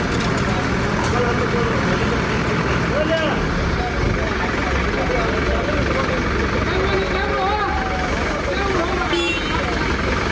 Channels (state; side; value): identical; both; correlation 1.00